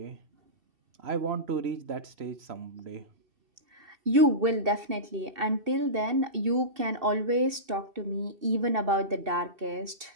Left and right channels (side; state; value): left; late; 2.7 ms